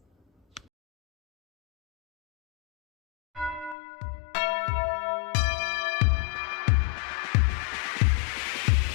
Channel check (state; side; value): drops out; right; at 3.8 s